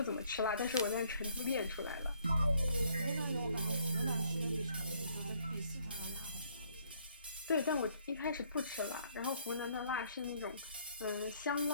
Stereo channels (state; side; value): inverted; both; correlation -0.65